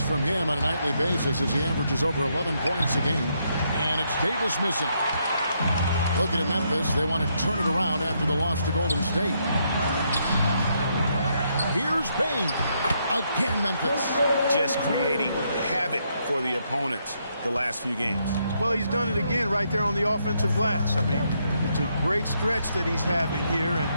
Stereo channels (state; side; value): inverted; both; correlation -0.76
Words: from him on a nightly basis as he averages over 11 points a game. And it's Davis missing. Looking at Memphis, they want to turn it around after the loss to Golden State. Here's Bain. Again, Memphis. Just creating havoc for the opponents the last few games. Well, he's done it again right there on the offensive glass. I mean, it's a great stretch that he's having here, and